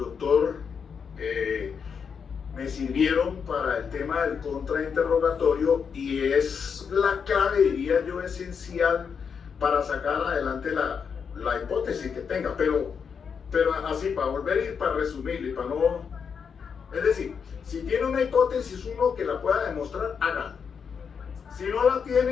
me sirvieron para el tema del contrainterrogatorio, y es la clave, diría yo, esencial para sacar adelante la hipótesis que tenga, pero así, para volver y para resumir, y para no... Es decir, si tiene una hipótesis uno que la pueda demostrar, hágalo. Si no la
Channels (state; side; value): quieter; right; 6.5 dB